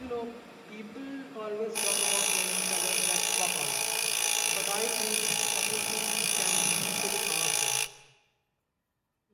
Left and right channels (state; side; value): identical; both; correlation 1.00